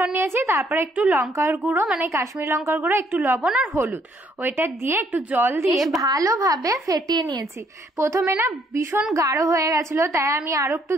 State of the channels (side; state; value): both; normal; correlation 0.68